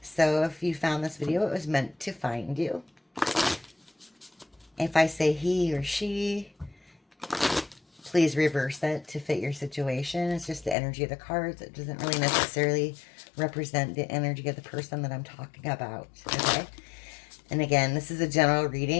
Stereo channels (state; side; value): drops out; right; at 10.8 s